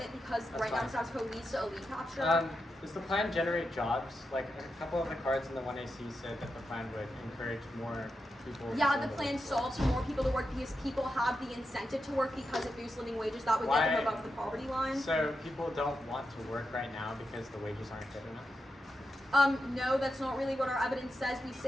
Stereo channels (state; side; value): normal; both; correlation 0.88